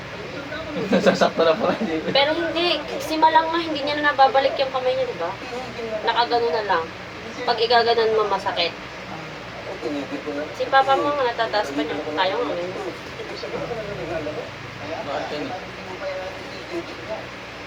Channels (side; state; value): both; identical; correlation 1.00